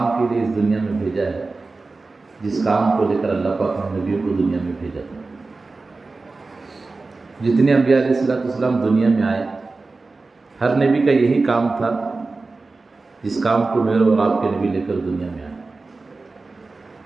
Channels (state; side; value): quieter; left; 3.7 dB